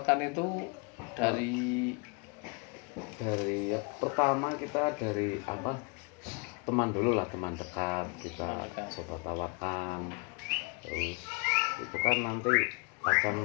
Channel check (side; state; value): right; quieter; 30.9 dB